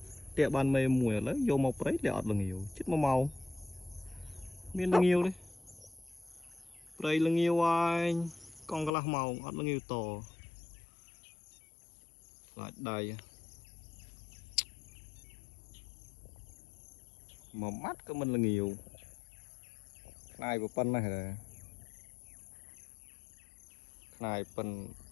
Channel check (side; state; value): right; drops out; at 8.9 s